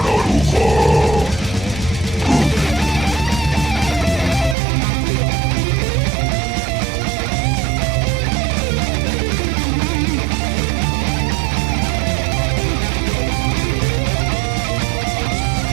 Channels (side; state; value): left; drops out; at 4.5 s